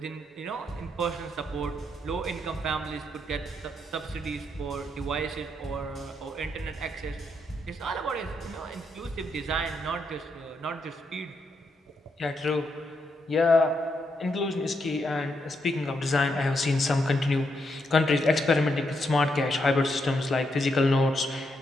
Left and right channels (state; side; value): normal; both; correlation 0.80